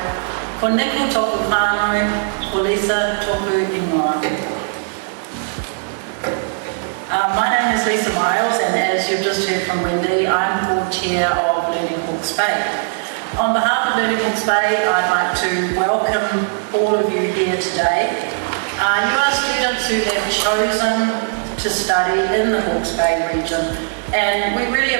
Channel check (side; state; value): left; silent; 60 dB below the other